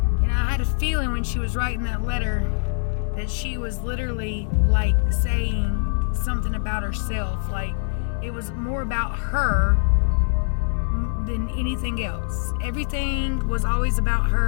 I had a feeling when she was writing that letter that she was literally like saying something about herself. Like it was more about her than anything else. Everything was always about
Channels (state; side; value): silent; right; digital silence